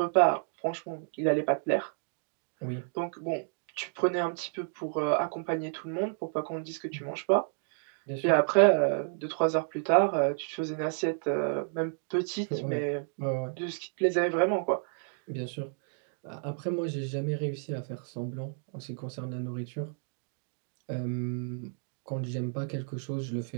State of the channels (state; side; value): silent; left; 57 dB below the other